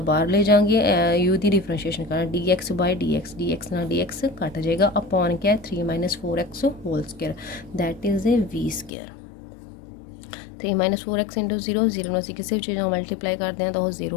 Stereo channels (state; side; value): drops out; right; at 8.9 s